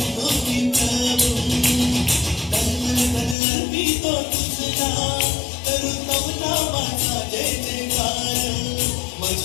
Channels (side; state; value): right; drops out; at 3.4 s